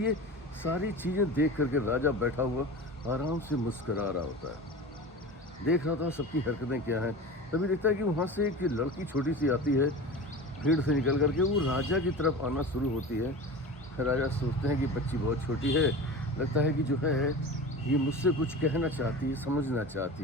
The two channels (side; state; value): both; normal; correlation 0.32